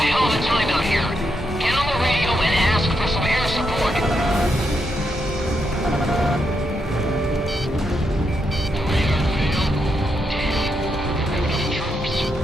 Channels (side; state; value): both; normal; correlation 0.81